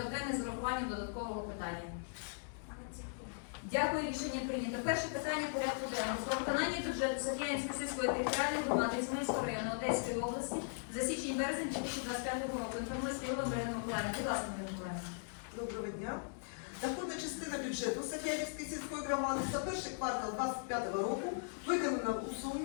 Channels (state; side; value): silent; right; digital silence